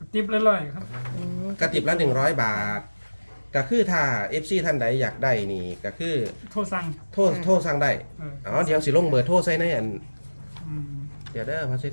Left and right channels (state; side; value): inverted; both; correlation -1.00